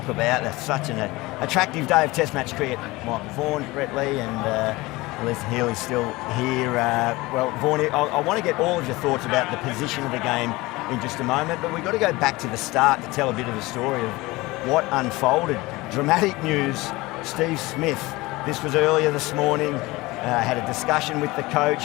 about. That's such an attractive day of Test match cricket. Michael Vaughan, Brett Lee and Alyssa Healy still here. Well, Vaughan, I want to get all of your thoughts about the position of the game in just a moment, but we've got to go back to the start to tell a bit of the story of what unfolded. Dramatic news, Steve Smith. This was earlier this morning. Had a discussion with the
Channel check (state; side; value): quieter; right; 21.1 dB